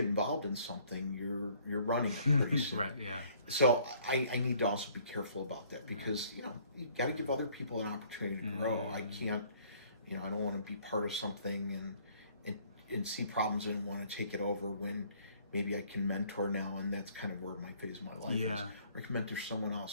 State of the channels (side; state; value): both; inverted; correlation -0.59